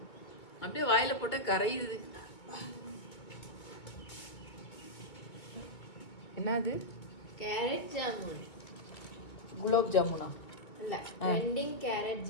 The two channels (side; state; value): right; late; 2.2 ms